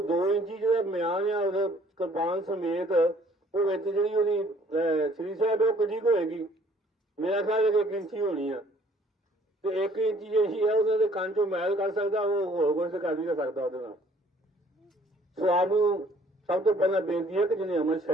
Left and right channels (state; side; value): normal; both; correlation 0.58